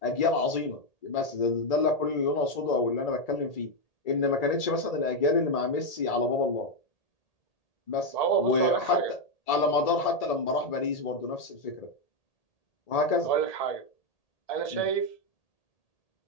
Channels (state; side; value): late; right; 1.8 ms